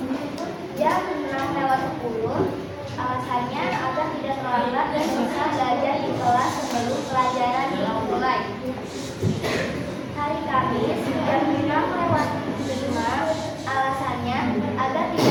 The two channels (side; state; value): both; identical; correlation 1.00